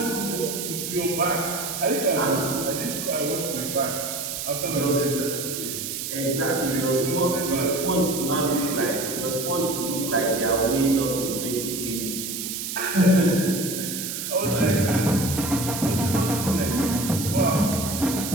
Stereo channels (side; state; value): right; noise; hiss, 5 dB below the sound